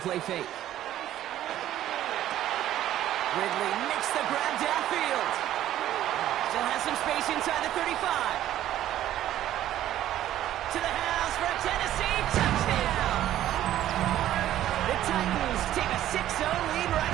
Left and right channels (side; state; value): left; quieter; 12.7 dB